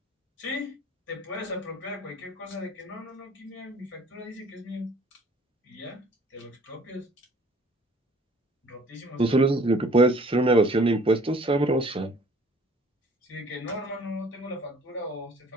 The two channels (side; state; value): both; normal; correlation 0.54